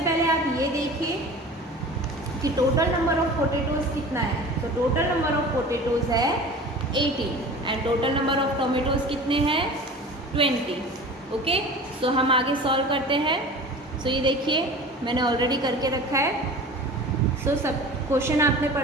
आप ये देखिए कि टोटल नंबर ऑफ पोटेटोज कितना है. तो टोटल नंबर ऑफ पोटेटोज है 18 and total number of tomatoes कितने हैं 20. ओके. सो हम आगे सॉल्व करते हैं. सो ये देखिए मैंने ऑलरेडी करके रखा है. सो सब क्वेश्चन आपने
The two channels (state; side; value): normal; both; correlation 0.38